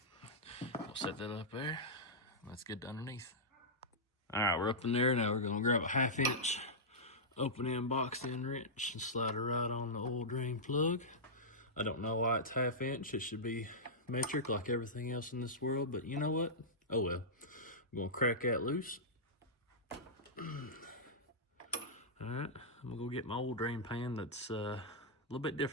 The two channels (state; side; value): normal; both; correlation -0.12